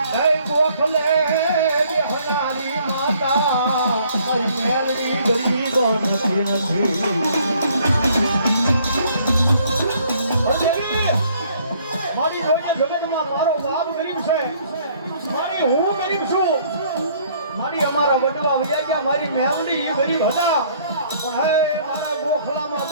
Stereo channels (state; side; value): inverted; both; correlation -0.61